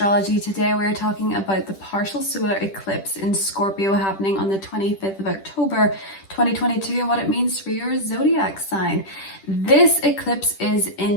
Today we're talking about the partial solar eclipse in Scorpio happening on the 25th of October 2022 and what it means for your zodiac sign. This eclipse is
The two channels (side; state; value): right; late; 10 ms